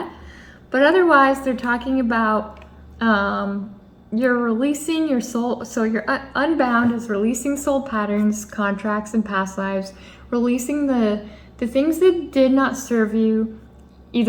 But otherwise, they're talking about you're releasing your soul. So your unbound is releasing soul patterns, contracts, and past lives, releasing the things that did not serve you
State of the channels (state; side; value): identical; both; correlation 1.00